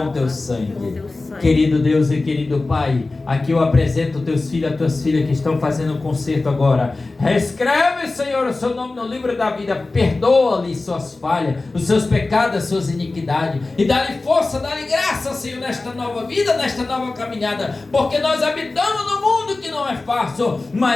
o teu sangue. Querido Deus e querido Pai, aqui eu apresento teus filhos, as tuas filhas que estão fazendo um concerto agora. Reescreve, Senhor, o seu nome no livro da vida. Perdoa-lhe suas falhas, os seus pecados, as suas iniquidades, e dá-lhe força, dá-lhe graça, Senhor, nesta nova vida, nesta nova caminhada, porque nós habitamos no mundo que não é fácil,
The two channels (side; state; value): right; quieter; 3.4 dB